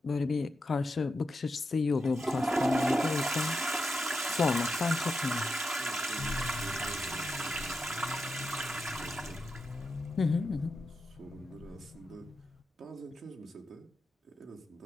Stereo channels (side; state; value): both; normal; correlation 0.87